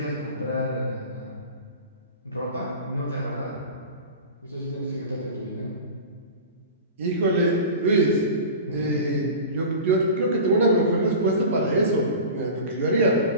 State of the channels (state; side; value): inverted; both; correlation -0.33